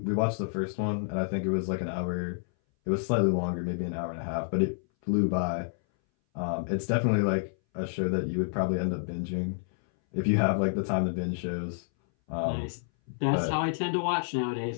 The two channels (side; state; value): right; silent; 59 dB below the other